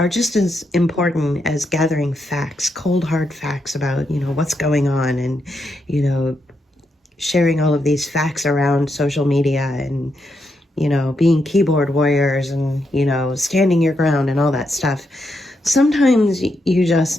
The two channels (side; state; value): both; normal; correlation 0.82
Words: just as important as gathering facts, cold hard facts about, you know, what's going on, and, you know, sharing all of these facts around social media, and, you know, being keyboard warriors, and, you know, standing your ground and all that stuff. Sometimes you just